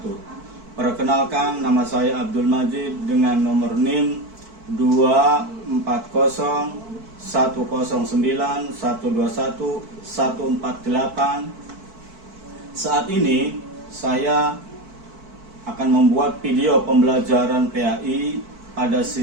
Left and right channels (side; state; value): left; late; 4.5 ms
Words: Perkenalkan, nama saya Abdul Majid dengan nomor NIM 2409109121148. Saat ini saya akan membuat video pembelajaran PAI pada